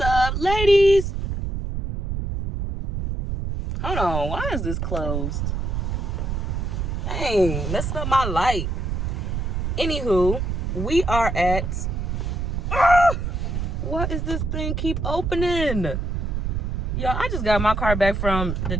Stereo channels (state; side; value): noise; right; rumble, 2 dB below the sound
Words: ladies? Hold on, why is this closed? Dang, messing up my light. Anywho, we are at... what is this thing keep opening? Yo, I just got my car back from the